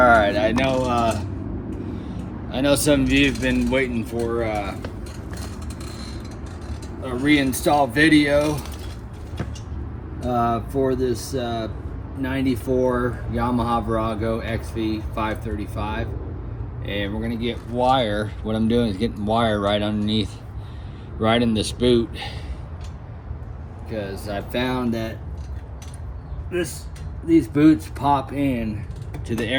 I know some of you have been waiting for a reinstall video for this 94 Yamaha Virago xv535, and we're gonna get wire. What I'm doing is getting wire right underneath, right in this boot, because I found that these boots pop in to the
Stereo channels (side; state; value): both; identical; correlation 1.00